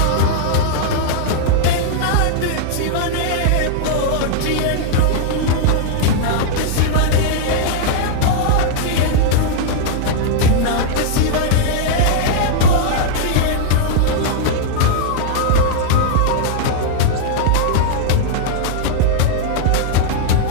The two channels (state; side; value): different; both; correlation -0.01